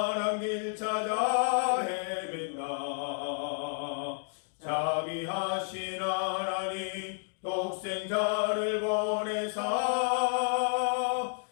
길 찾아 헤맨다. 자비하신 하나님 독생자를 보내사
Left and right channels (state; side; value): silent; right; 57 dB below the other